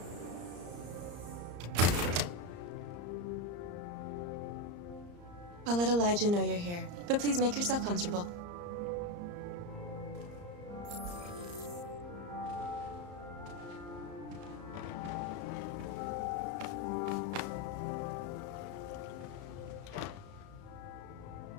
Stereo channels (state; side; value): late; left; 34 ms